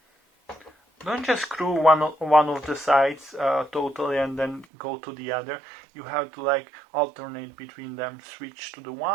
Don't just screw one of the sides totally and then go to the other. You have to like alternate between them, switch to the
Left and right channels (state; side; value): drops out; left; at 4.7 s